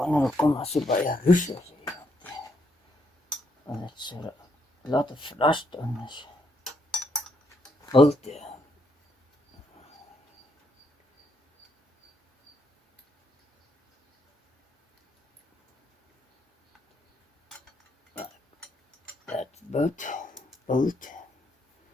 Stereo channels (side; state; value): both; normal; correlation 0.75